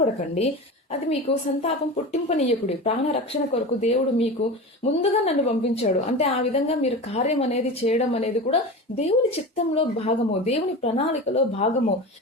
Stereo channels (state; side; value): normal; both; correlation 0.29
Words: అది మీకు సంతాపం పుట్టింపనీయకుడి. ప్రాణ రక్షణ కొరకు దేవుడు మీకు ముందుగా నన్ను పంపించాడు. అంటే ఆ విధంగా మీరు కార్యం అనేది చేయడం అనేది కూడా దేవుని చిత్తంలో భాగము, దేవుని ప్రణాళికలో భాగము.